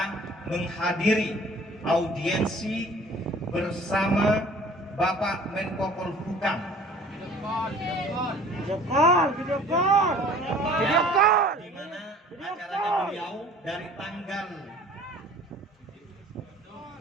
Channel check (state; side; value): normal; both; correlation 0.49